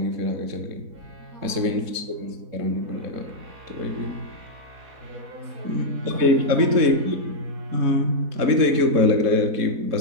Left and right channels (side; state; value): left; late; 4.1 ms